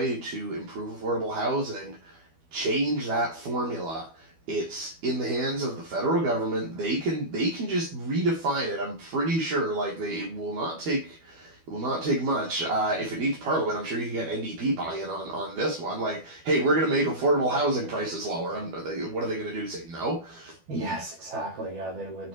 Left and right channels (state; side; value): late; left; 12 ms